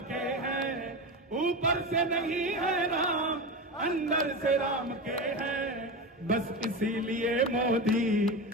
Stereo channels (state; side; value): normal; both; correlation 0.22